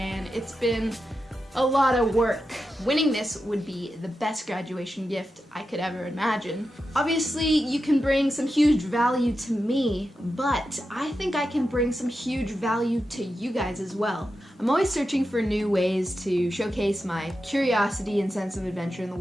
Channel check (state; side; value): normal; both; correlation 0.89